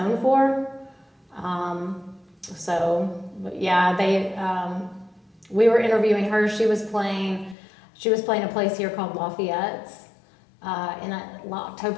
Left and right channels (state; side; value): drops out; right; at 7.6 s